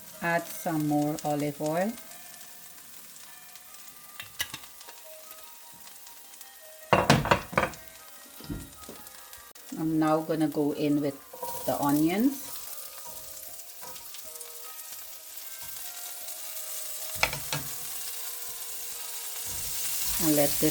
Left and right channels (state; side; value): identical; both; correlation 1.00